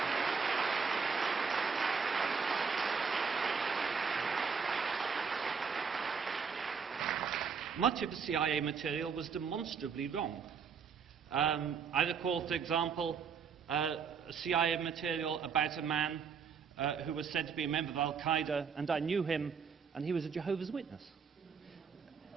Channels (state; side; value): quieter; left; 6.1 dB